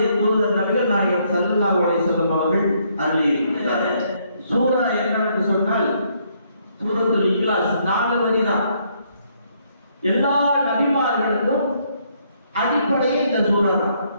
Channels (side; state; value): both; inverted; correlation -0.70